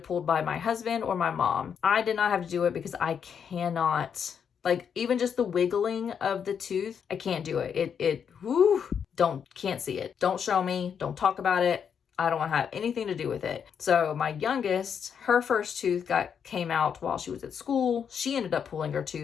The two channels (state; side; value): quieter; right; 7.4 dB